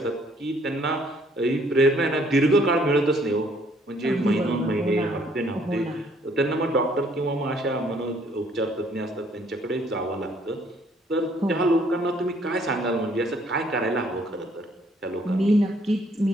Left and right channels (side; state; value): both; normal; correlation 0.64